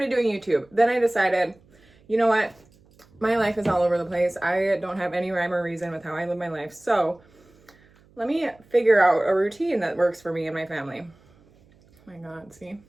doing YouTube. Then I decided, you know what? My life is all over the place. I don't have any rhyme or reason with how I live my life. So let me figure out a routine that works for me and my family. Oh my God, see?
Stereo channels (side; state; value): right; noise; hum, 30 dB below the sound